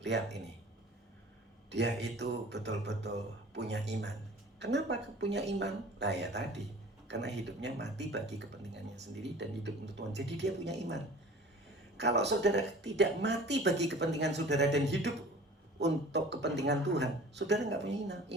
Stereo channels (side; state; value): both; normal; correlation 0.44